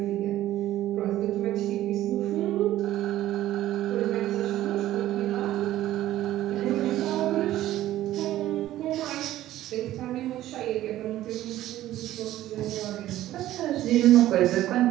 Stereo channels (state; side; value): quieter; left; 14.1 dB